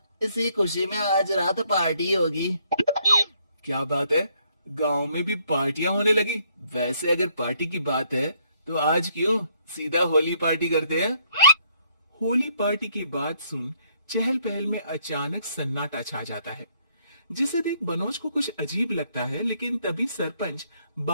इसी खुशी में आज रात पार्टी होगी। क्या बात है, गांव में भी पार्टियां होने लगी। वैसे अगर पार्टी की बात है तो आज क्यों सीधा होली पार्टी करते हैं। होली पार्टी की बात सुन चहल पहल में अचानक सन्नाटा छा जाता है, जिसे देख मनोज को कुछ अजीब लगता है, लेकिन तभी सरपंच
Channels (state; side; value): inverted; both; correlation -0.68